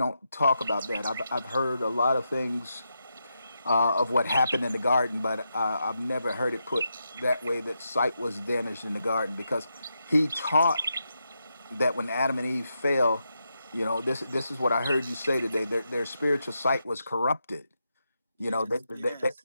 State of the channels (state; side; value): inverted; both; correlation -0.85